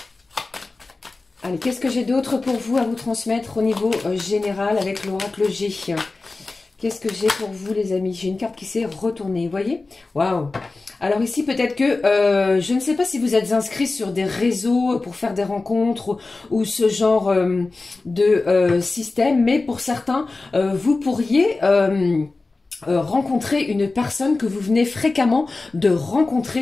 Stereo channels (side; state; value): right; quieter; 3.5 dB